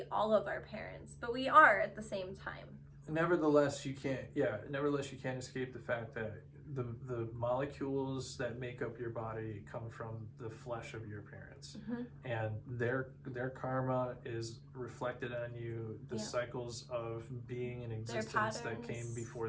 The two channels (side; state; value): both; identical; correlation 1.00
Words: all of our parents, but we are at the same time. Nevertheless, you can't escape the fact that the molecules that make up your body come from the flesh of your parents, and their karma is reflected on you. The cycles of being in existence that came before